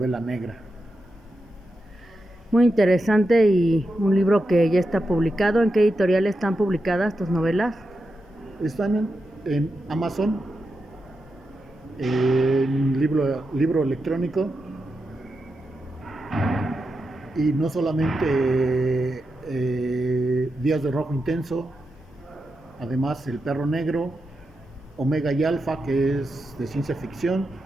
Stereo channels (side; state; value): both; normal; correlation 0.88